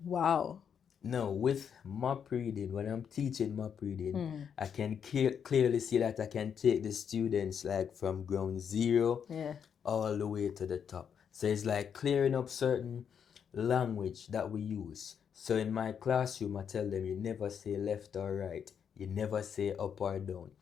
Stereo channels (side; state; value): right; quieter; 7.6 dB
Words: Wow. Now, with map reading, when I'm teaching map reading, I can clearly see that I can take the students like from ground zero Yeah. all the way to the top. So it's like clearing up certain language that we use. So in my classroom, I tell them you never say left or right, you never say up or down.